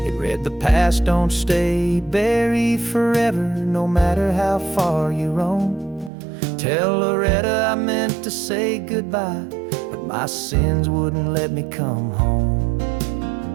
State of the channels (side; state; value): left; drops out; at 6.1 s